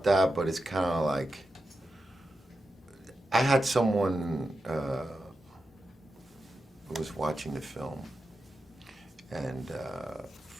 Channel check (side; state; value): both; normal; correlation 0.90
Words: that, but it's kind of like, I had someone who was watching the film, and